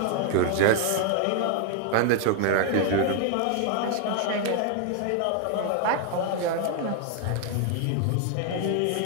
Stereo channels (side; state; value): both; different; correlation 0.00